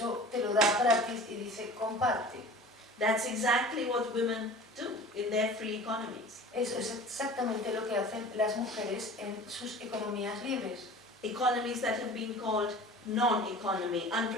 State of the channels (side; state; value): both; normal; correlation 0.41